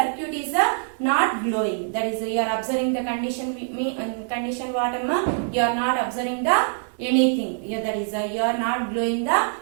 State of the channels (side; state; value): left; silent; digital silence